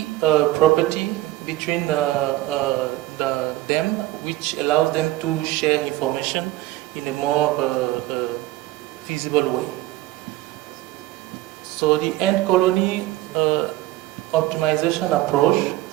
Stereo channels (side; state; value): left; quieter; 16.7 dB